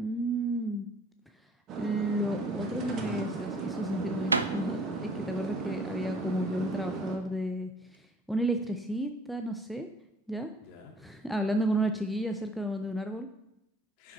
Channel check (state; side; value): normal; both; correlation 0.52